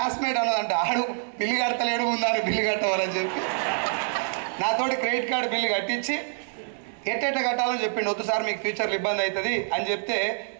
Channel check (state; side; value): silent; left; digital silence